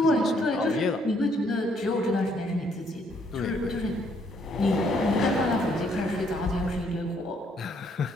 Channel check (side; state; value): both; normal; correlation 0.69